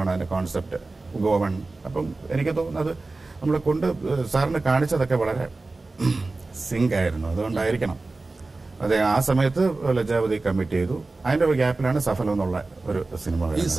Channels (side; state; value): left; quieter; 3.4 dB